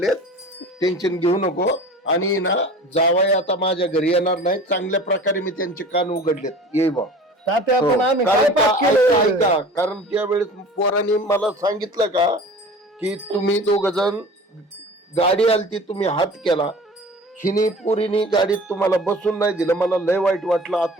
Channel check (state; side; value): normal; both; correlation 0.41